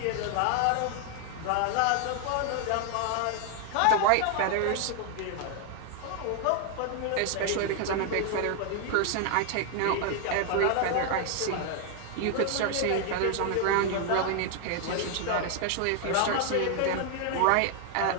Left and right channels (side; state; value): both; different; correlation 0.00